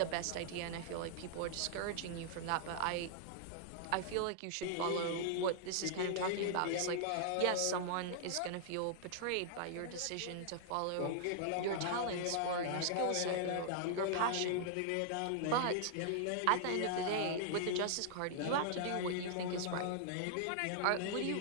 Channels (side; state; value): both; different; correlation -0.01